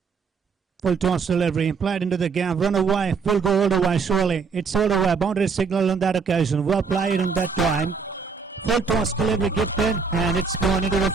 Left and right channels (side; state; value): left; quieter; 5.2 dB